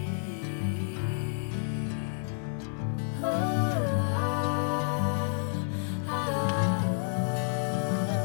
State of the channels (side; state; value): right; silent; digital silence